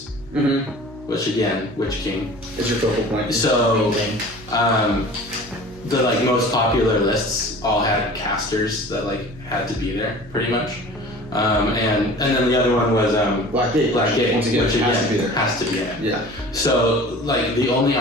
Mm-hmm. which again, Witch King. It's your focal point. So the most popular lists all had casters that had to be there pretty much. And then the other one was Black Gate. Black Gate, Once again, which has to be there. Has to be in it. Yeah. So the only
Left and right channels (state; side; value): noise; right; hum, 21 dB below the sound